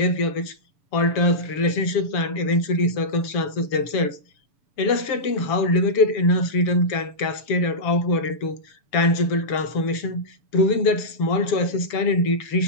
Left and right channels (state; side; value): late; right; 7.0 ms